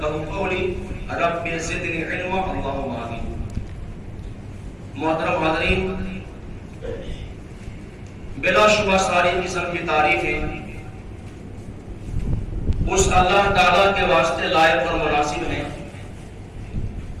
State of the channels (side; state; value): both; identical; correlation 1.00